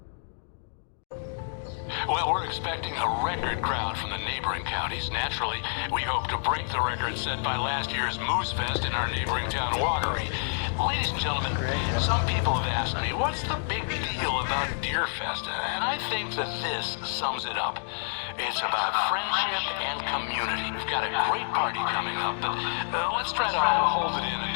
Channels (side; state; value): right; silent; digital silence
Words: Well, we're expecting a record crowd from the neighboring counties. Naturally, we hope to break the record set by last year's Moose Fest in our neighboring town, Watery. Ladies and gentlemen, some people have asked me, what's the big deal about Deer Fest? And I think that this sums it up. It's about friendship and community. We've got a great party coming up, but let's try to hold it in